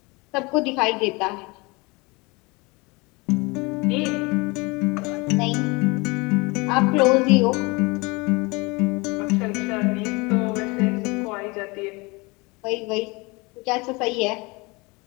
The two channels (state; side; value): quieter; right; 26.2 dB